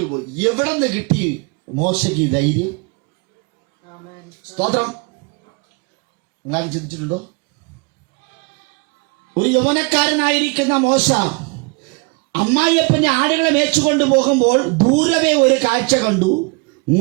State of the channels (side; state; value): left; quieter; 30.0 dB